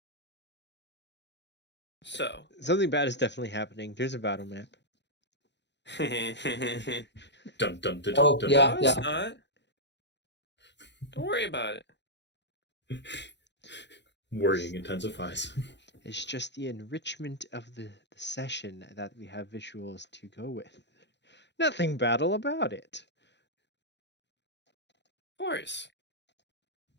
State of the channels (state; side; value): late; right; 0.51 ms